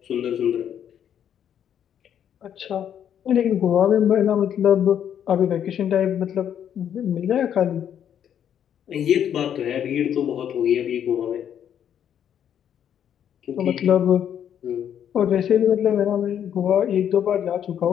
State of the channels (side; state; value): right; quieter; 9.3 dB